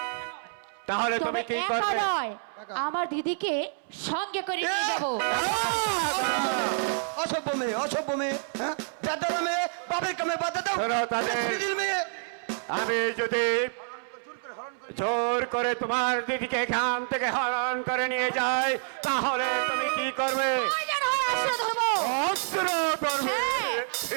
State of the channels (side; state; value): left; silent; 59 dB below the other